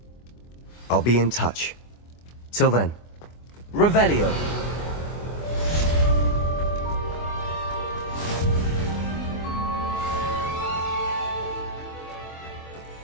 I'll be in touch. Till then. Revelio.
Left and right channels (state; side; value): late; right; 24 ms